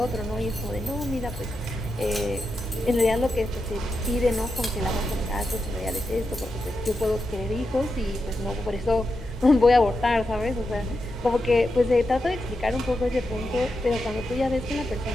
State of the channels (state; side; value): normal; both; correlation 0.87